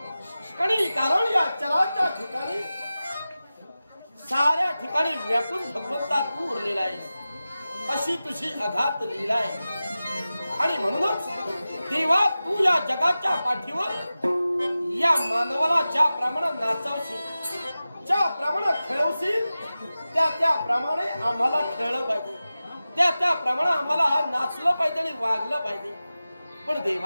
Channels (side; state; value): both; inverted; correlation -0.95